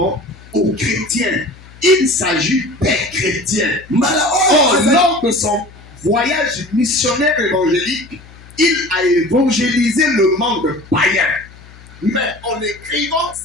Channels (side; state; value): left; noise; hum, 22 dB below the sound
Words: aux chrétiens. Il s'agit des chrétiens. Or, lors de son voyage missionnaire évangélique, il a évangélisé le monde païen. Mais en écrivant